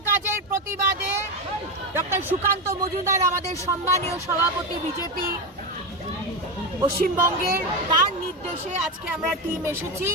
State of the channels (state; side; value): normal; both; correlation 0.14